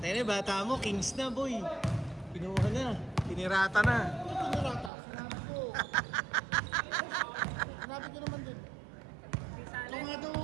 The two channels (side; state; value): left; drops out; at 4.9 s